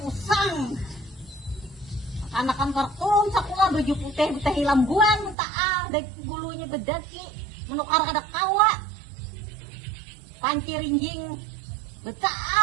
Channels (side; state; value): left; drops out; at 5.4 s